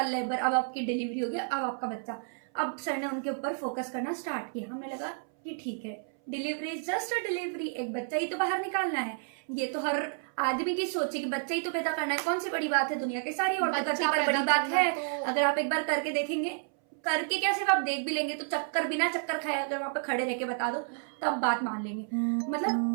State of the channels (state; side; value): silent; left; 57 dB below the other